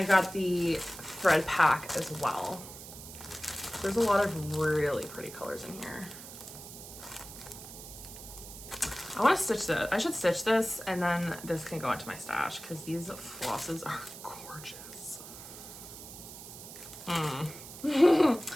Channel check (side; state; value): right; noise; hiss, 14 dB below the sound